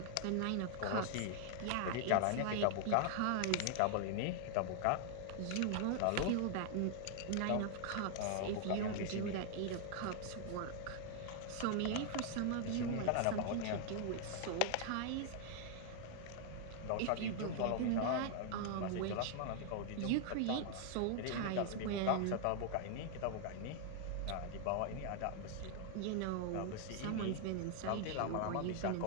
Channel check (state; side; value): different; both; correlation 0.00